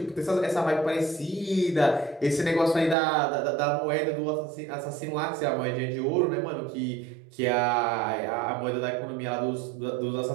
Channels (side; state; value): left; drops out; at 3.0 s